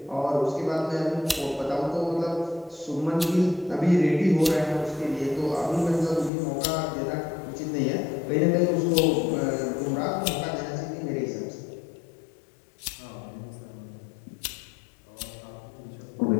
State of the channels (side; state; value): right; drops out; at 6.3 s